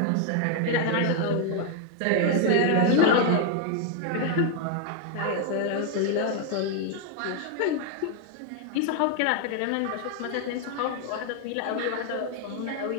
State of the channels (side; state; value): both; different; correlation 0.00